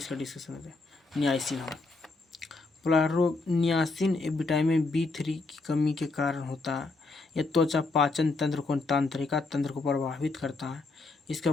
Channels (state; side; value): quieter; right; 3.6 dB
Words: डिस्कशन होता है नियासिन। हाँ, पोलग्राहा रोग नियासिन विटामिन B3 की कमी के कारण होता है। यह त्वचा पाचन तंत्र को, तंत्रिका तंत्र को प्रभावित करता है। इसका